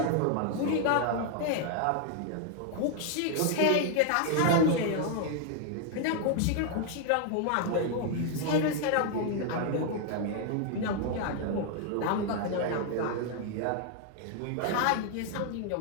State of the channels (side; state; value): both; different; correlation 0.00